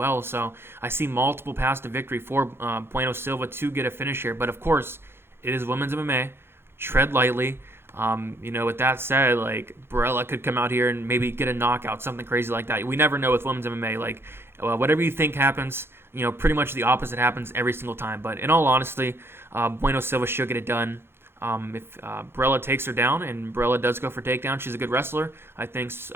So I see multiple paths to victory for Bueno Silva to get a finish here. But, of course, it is women's MMA. Tread lightly. With that said, Barela could come out here and maybe get a knockout, something crazy like that. We never know with women's MMA. Whatever you think happens, pretty much the opposite happens every single time. But in all honesty, Bueno Silva should get it done. If Barela takes her down, and Barela does go for takedown, she's a good wrestler. I think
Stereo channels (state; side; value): late; left; 0.11 ms